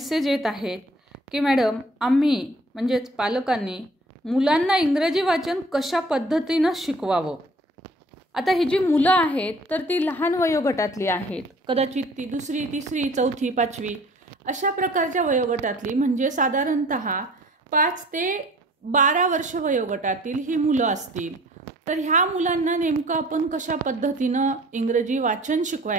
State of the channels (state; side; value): normal; both; correlation 0.52